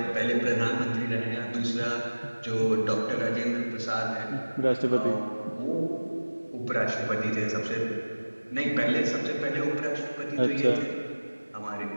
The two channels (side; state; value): both; inverted; correlation -1.00